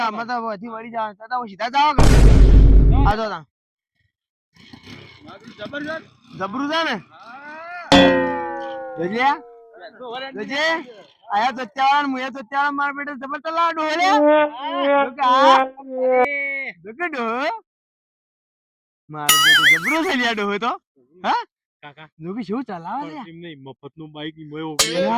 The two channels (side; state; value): both; identical; correlation 1.00